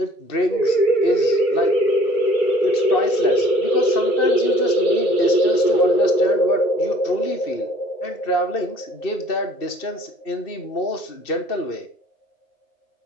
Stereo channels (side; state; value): right; late; 2.6 ms